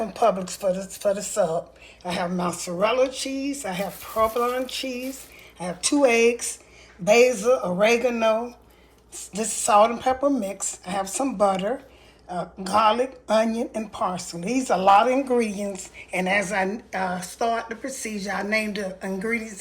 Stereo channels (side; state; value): both; identical; correlation 1.00